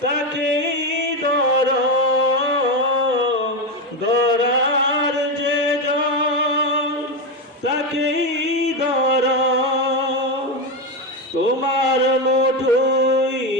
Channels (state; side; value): normal; both; correlation 0.11